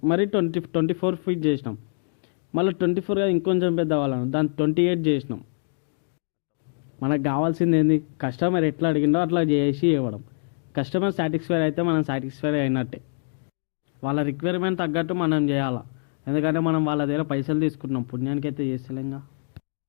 మరి 24 ఫీట్ చేసినాం. మళ్ళీ 24గా ఇంకొంచెం పెద్ద కావాలని దాన్ని 28 చేసినాం. మనకు కావాల్సింది ఏంది? కస్టమర్ ఎట్లా అడిగిండో అట్లా చేసి ఇవ్వడం. కస్టమర్ సాటిస్ఫై అయితే మనం సాటిస్ఫై అయినట్టే. వాళ్ళ రిక్వైర్మెంట్ తగ్గట్టు మనం చేయాలా, ఎందుకంటే మనం వాళ్ళ దగ్గర పైసలు తీసుకుంటున్నాం, పుణ్యానికి అయితే చేస్తలేంగా.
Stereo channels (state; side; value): silent; right; digital silence